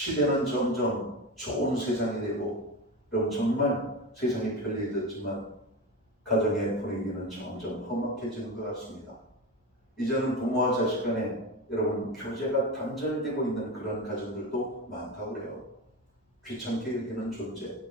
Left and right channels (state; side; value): normal; both; correlation 0.23